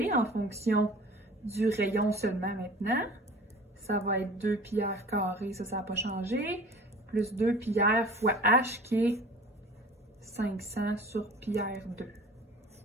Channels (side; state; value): both; normal; correlation 0.43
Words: en fonction du rayon seulement maintenant, ça va être 2 pi r carré, ça n'a pas changé, plus 2 pi r fois h qui est 500 sur pi r 2.